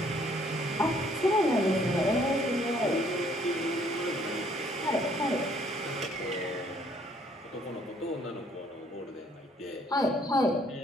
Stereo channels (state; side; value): normal; both; correlation 0.64